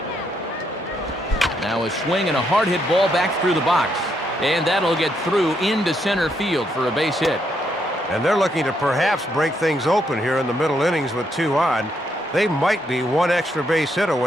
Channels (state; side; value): normal; both; correlation 0.76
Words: Now a swing and a hard hit ball back through the box. And that'll get through into center field for a base hit. And they're looking to perhaps break things open here in the middle innings with 2 on. They might be 1 extra base hit